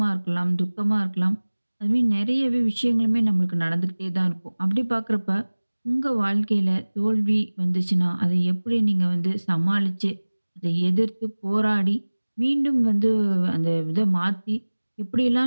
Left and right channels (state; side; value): inverted; both; correlation -1.00